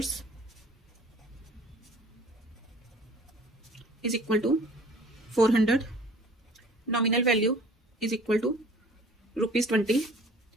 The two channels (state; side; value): normal; both; correlation 0.50